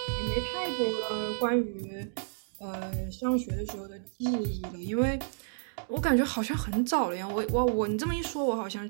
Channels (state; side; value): silent; left; digital silence